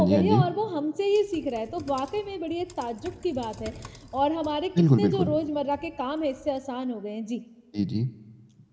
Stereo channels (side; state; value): both; identical; correlation 1.00